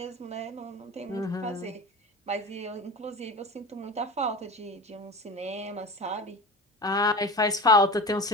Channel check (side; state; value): both; normal; correlation 0.32